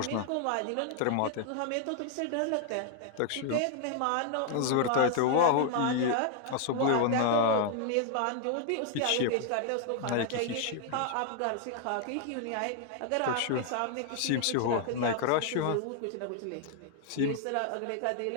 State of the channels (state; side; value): different; both; correlation 0.00